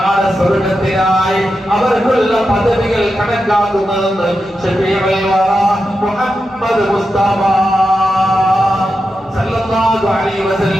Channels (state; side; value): normal; both; correlation 0.89